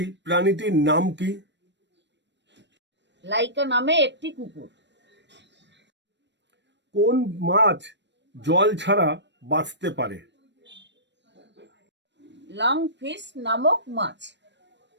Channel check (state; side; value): late; left; 0.52 ms